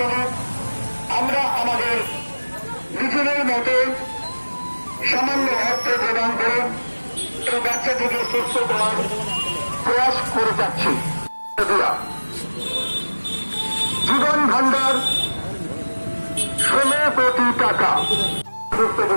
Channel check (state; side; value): inverted; both; correlation -1.00